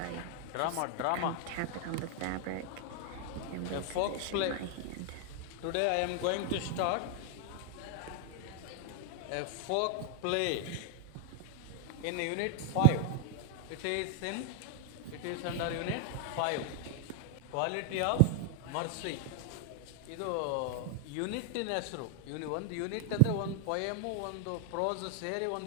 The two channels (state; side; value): different; both; correlation 0.00